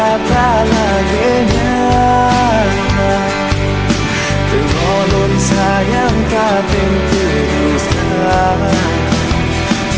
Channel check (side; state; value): both; identical; correlation 1.00